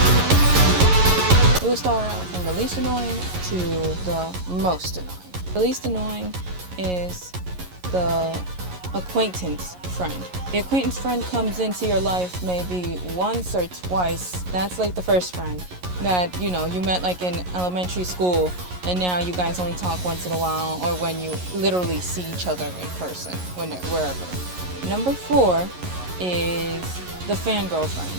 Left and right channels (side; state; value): left; late; 11 ms